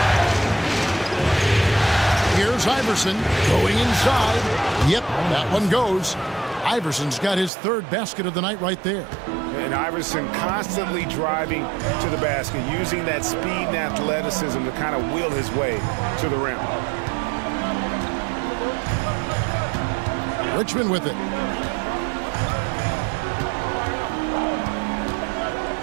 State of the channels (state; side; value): drops out; left; at 7.5 s